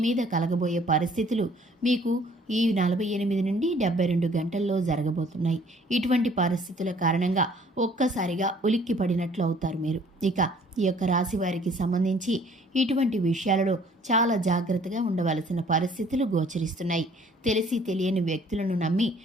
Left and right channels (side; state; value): both; normal; correlation 0.57